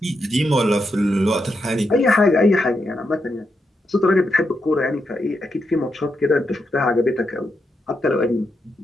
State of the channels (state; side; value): normal; both; correlation 0.84